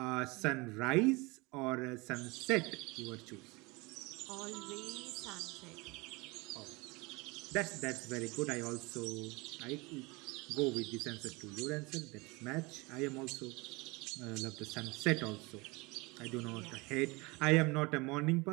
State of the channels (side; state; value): left; quieter; 25.4 dB